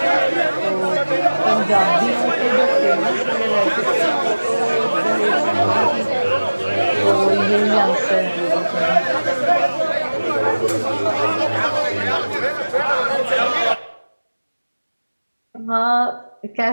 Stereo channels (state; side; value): inverted; both; correlation -1.00